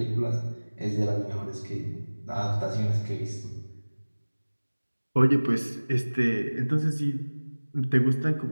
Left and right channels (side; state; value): both; inverted; correlation -1.00